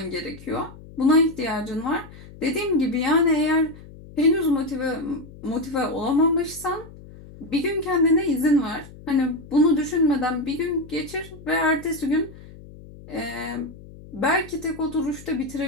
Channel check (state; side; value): noise; left; hum, 18 dB below the sound